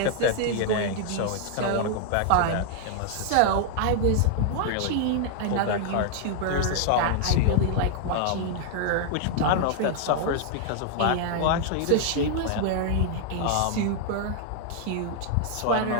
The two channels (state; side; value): different; both; correlation 0.00